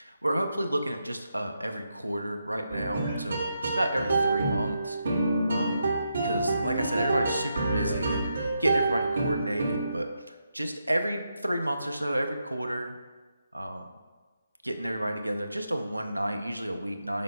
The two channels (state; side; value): inverted; both; correlation -0.84